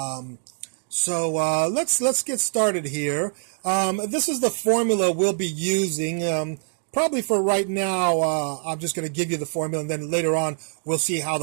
Let's get started here. This is the formula we'll be using. Probably for right now, I'm just going to give you the formula, and then later on we'll see how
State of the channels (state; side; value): silent; left; 62 dB below the other